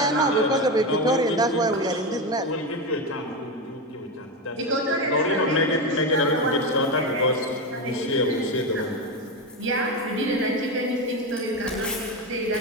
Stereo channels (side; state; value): both; normal; correlation 0.15